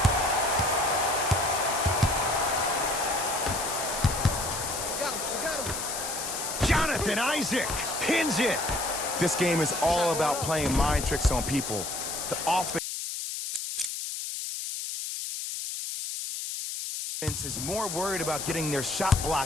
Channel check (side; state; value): left; noise; hiss, 5 dB below the sound